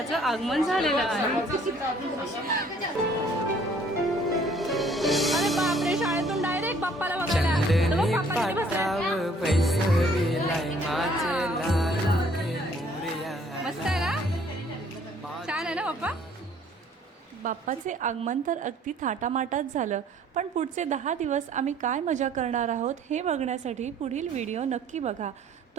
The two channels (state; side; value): normal; both; correlation 0.59